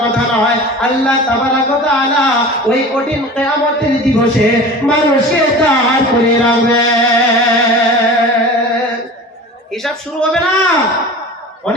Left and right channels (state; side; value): normal; both; correlation 0.36